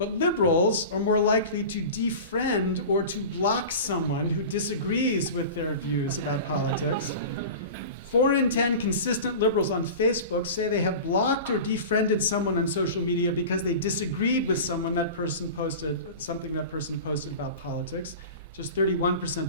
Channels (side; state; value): both; inverted; correlation -0.33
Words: liberals are more likely to defriend or to block someone who disagrees with their views about politics. 4 in 10 consistent liberals on Facebook say they have blocked or defriended someone on social media because they disagreed with something that person posted about politics. Just